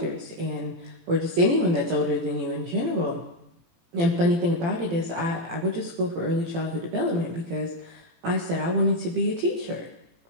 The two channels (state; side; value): late; left; 18 ms